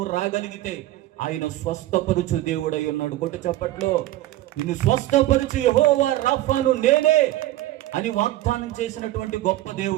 రాగలిగితే ఆయన స్వస్థపరుచు దేవుడై ఉన్నాడు. కొట్టు చప్పట్లో. నిన్ను స్వస్థపరుచు యెహోవా రాఫాను నేనే అని వాగ్దానం చేసినటువంటి గొప్ప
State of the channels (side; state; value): left; quieter; 15.5 dB